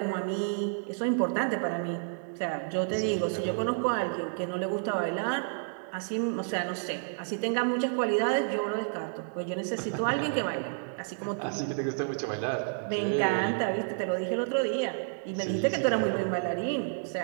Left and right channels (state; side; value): silent; left; digital silence